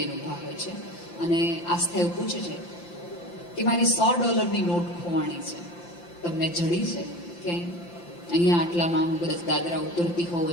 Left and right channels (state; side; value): late; right; 5.8 ms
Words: ઊભા હોય છે અને આસ્થા એવું પૂછે છે કે મારી $100 નોટ ખોવાણી છે, તમને જડી છે કે અહીંયા આટલામાં હું કદાચ દાદરા ઉતરતી હોઉં